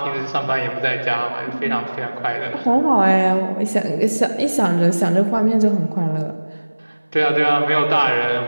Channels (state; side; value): inverted; both; correlation -1.00